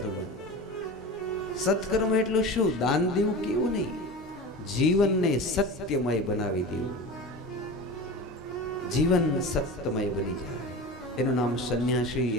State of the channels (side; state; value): both; normal; correlation 0.31